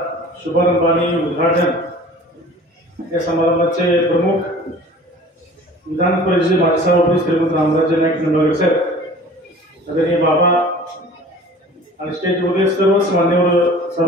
शुभारंभ आणि उद्घाटन या समारंभाचे प्रमुख विधान परिषदेचे माजी सभापती श्रीमंत रामराजे नाईक निंबाळकर साहेब, आदरणीय बाबा आणि स्टेजमध्ये सर्वच मान्यवर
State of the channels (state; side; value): normal; both; correlation 0.45